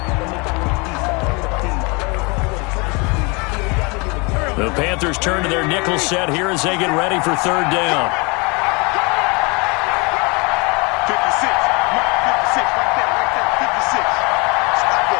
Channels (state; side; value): quieter; right; 29.3 dB